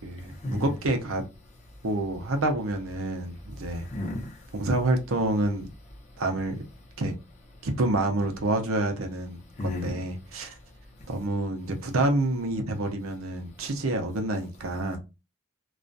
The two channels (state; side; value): normal; both; correlation 0.40